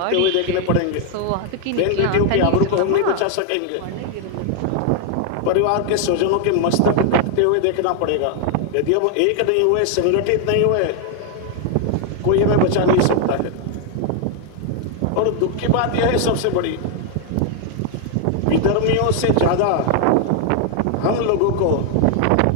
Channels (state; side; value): different; both; correlation 0.00